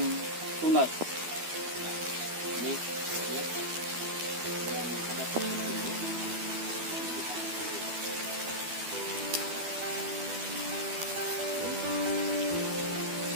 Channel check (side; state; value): left; late; 12 ms